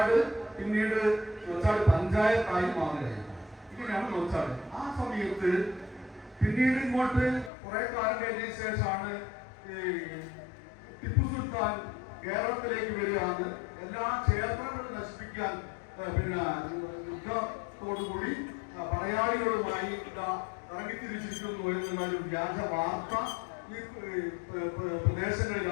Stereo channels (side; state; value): right; drops out; at 7.5 s